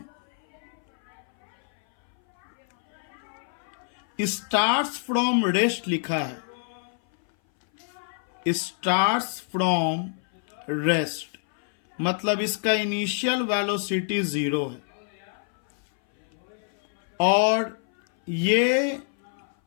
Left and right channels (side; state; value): right; silent; 58 dB below the other